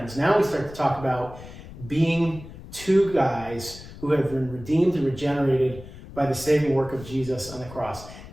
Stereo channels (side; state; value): left; noise; rumble, 16 dB below the sound